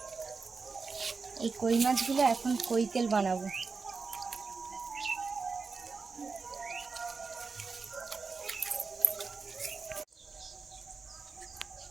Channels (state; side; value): quieter; left; 4.7 dB